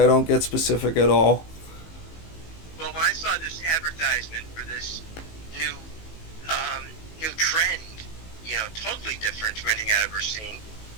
don't get specific at all. Well, when I saw this advertisement for this new new trend, totally different from anything I've ever seen.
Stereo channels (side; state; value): right; late; 18 ms